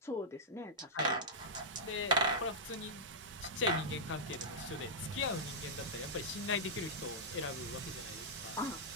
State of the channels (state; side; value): normal; both; correlation -0.11